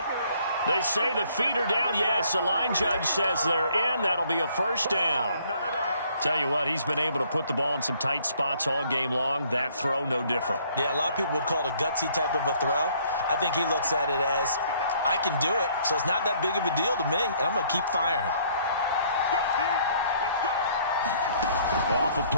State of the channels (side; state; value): both; inverted; correlation -0.62